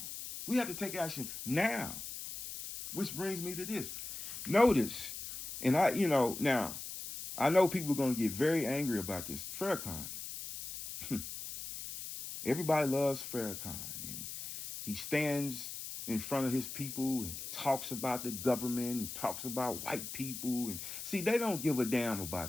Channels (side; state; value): left; noise; hiss, 8 dB below the sound